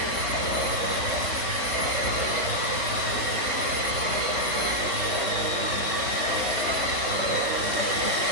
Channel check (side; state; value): left; late; 3.8 ms